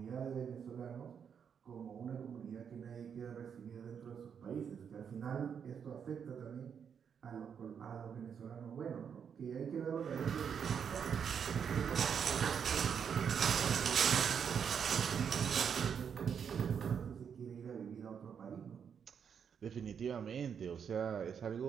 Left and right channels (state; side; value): quieter; left; 7.3 dB